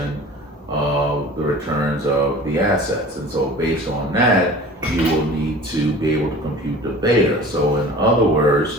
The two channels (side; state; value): both; normal; correlation 0.42